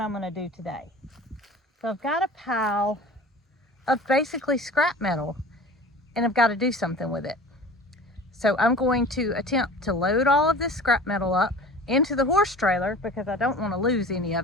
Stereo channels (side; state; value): both; normal; correlation 0.40